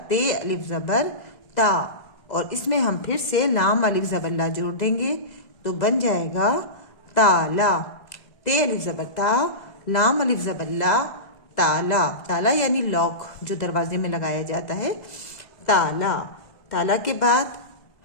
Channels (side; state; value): right; late; 2.0 ms